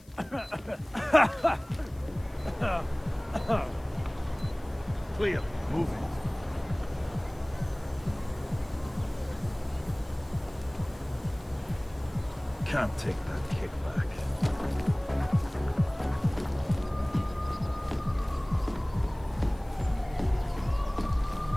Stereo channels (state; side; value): noise; left; hiss, 28 dB below the sound